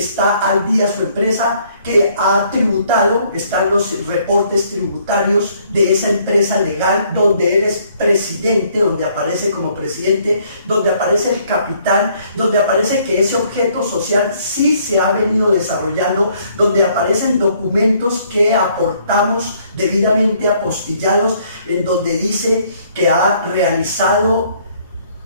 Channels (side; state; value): both; inverted; correlation -0.65